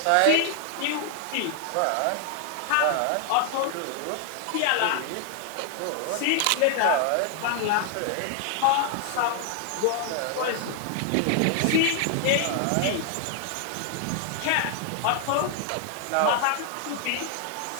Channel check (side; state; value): both; different; correlation 0.00